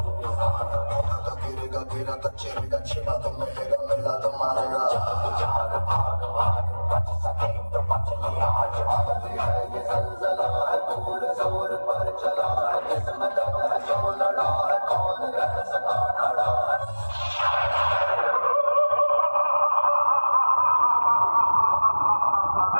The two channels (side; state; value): both; inverted; correlation -1.00